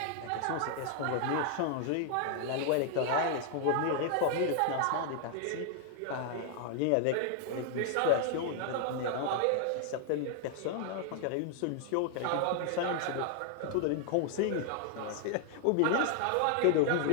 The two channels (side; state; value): both; different; correlation 0.00